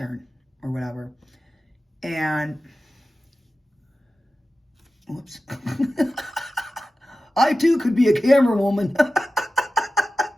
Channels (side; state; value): both; normal; correlation 0.94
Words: or whatever. And, whoops. I too could be a camera woman.